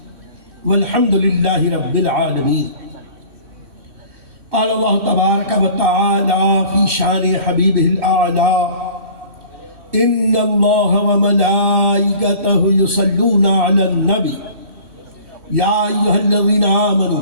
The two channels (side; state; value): left; late; 3.1 ms